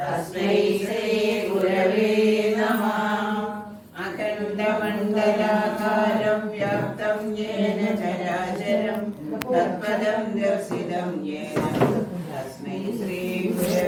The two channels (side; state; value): both; identical; correlation 1.00